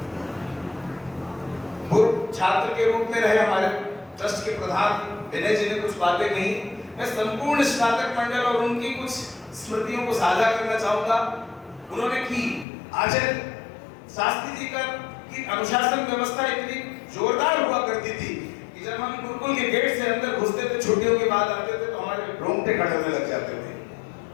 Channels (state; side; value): drops out; right; at 12.7 s